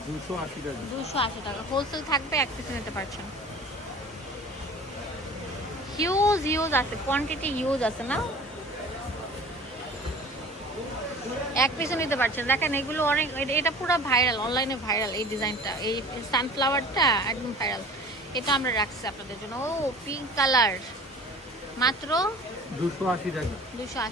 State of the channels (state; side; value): normal; both; correlation 0.43